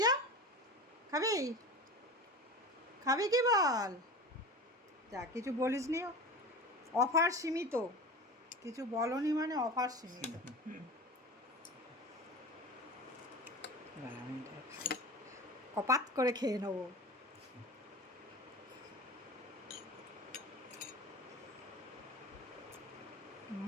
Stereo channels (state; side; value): normal; both; correlation 0.32